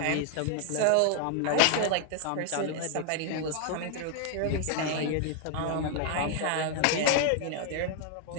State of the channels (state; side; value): different; both; correlation 0.00